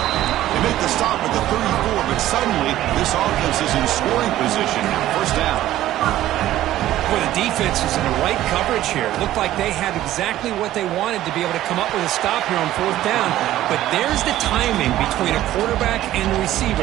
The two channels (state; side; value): quieter; left; 13.9 dB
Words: They make the stop at the 34, but suddenly this offense is in scoring position. 1st down. Well, the defense is in the right coverage here. Looked like they had exactly what they wanted to be able to come up with a stop here on 4th down. But there's the timing between a quarterback and the